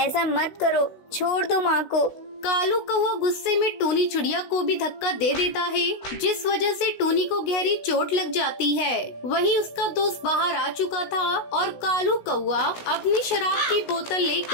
मत करो, छोड़ दो माँ को। कालू कौवा गुस्से में टूनी चिड़िया को भी धक्का दे देता है, जिस वजह से टूनी को गहरी चोट लग जाती है। वहीं उसका दोस्त बाहर आ चुका था और कालू कौवा अपनी शराब की बोतल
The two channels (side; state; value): right; late; 16 ms